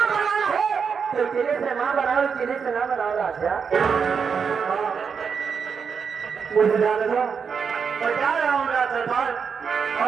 बनाना है तो तेरे से माँ बनाओ, तेरे से ना बनाओ राजा। मुझे जाने दो, मैं जा रहा हूँ सरदार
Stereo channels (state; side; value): quieter; left; 6.2 dB